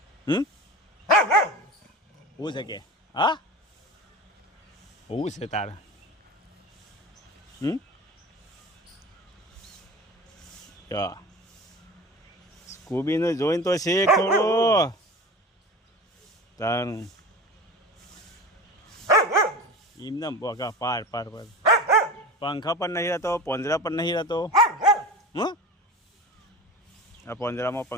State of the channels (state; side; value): normal; both; correlation 0.33